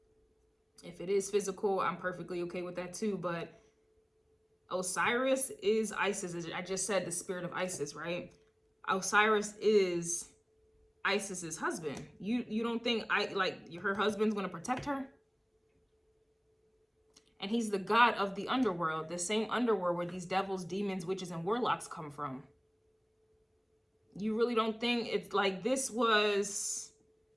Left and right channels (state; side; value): identical; both; correlation 1.00